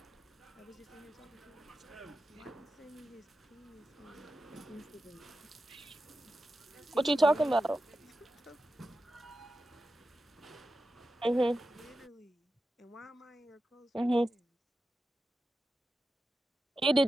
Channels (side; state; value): both; normal; correlation 0.92